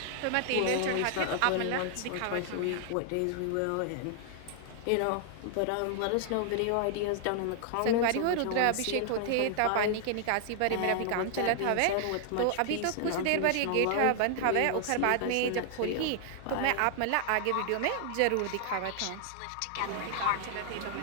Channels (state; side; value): different; both; correlation -0.01